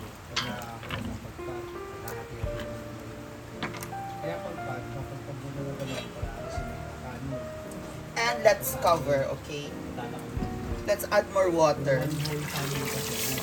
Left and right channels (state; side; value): identical; both; correlation 1.00